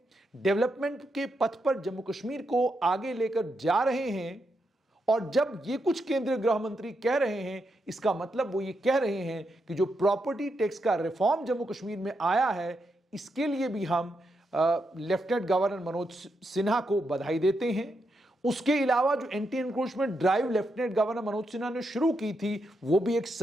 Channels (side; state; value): both; normal; correlation 0.83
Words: डेवलपमेंट के पथ पर जम्मू कश्मीर को आगे लेकर जा रहे हैं। और जब ये कुछ केंद्रीय गृह मंत्री कह रहे हैं, इसका मतलब वो ये कह रहे हैं कि जो प्रॉपर्टी टैक्स का रिफॉर्म जम्मू कश्मीर में आया है, इसके लिए भी हम लेफ्टिनेंट गवर्नर मनोज सिन्हा को बधाई देते हैं। उसके अलावा जो anti encroachment drive lieutenant governor Manoj Sinha ने शुरू की थी, वो भी एक